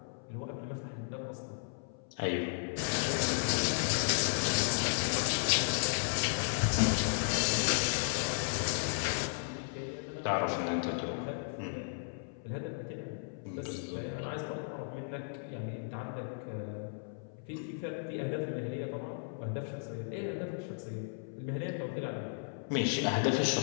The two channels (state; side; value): silent; right; 55 dB below the other